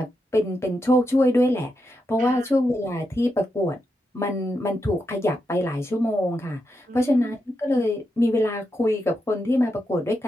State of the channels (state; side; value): normal; both; correlation 0.85